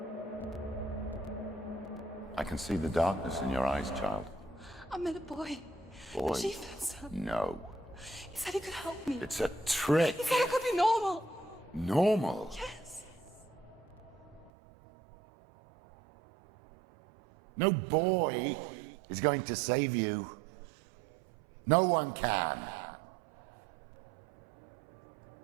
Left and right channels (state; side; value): drops out; left; at 14.5 s